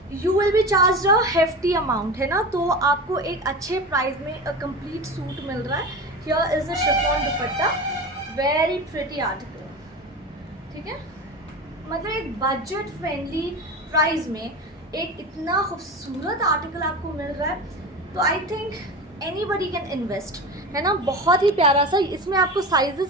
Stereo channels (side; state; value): both; normal; correlation 0.28